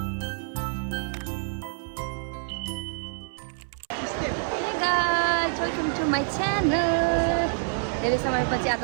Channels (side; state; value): left; silent; 60 dB below the other